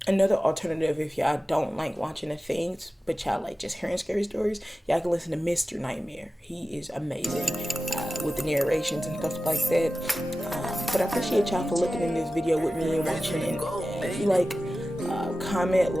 Another alternative, if y'all don't like watching the things, but y'all like just hearing scary stories, y'all can listen to Mr. Nightmare. He is amazing with the narrations and stuff like that. But I appreciate y'all for looking in this video with me and watching it. If you like, comment,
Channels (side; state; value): both; normal; correlation 0.95